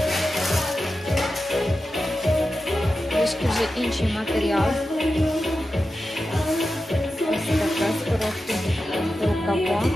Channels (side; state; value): both; normal; correlation 0.92